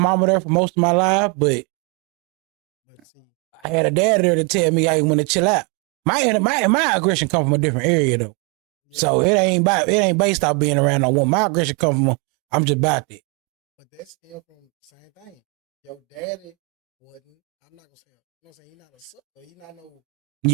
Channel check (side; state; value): left; quieter; 32.4 dB